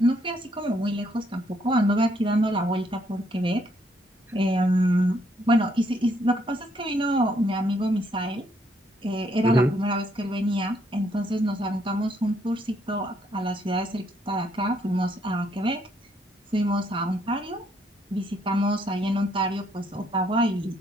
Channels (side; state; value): both; normal; correlation 0.70